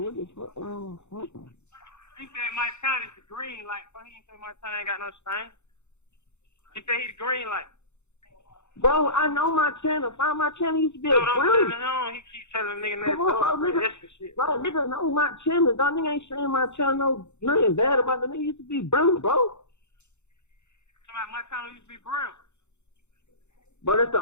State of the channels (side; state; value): right; late; 0.82 ms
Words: the fuck? He said Mike County is the green light, but he ain't say Mike County ain't got no stain. He said he the green light. Bro, I know my channel. Find my channel used to be a Dude, I'm brown. telling him, he keep telling nigga that Come on, bro, nigga. shit. Bro, nigga know my channel. Dog, nigga ain't saying my channel nothing bad about the nigga used to be brown, bro. My channel used to be brown. But that's the